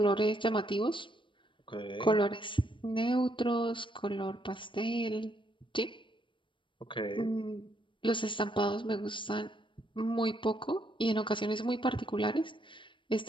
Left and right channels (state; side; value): late; right; 0.24 ms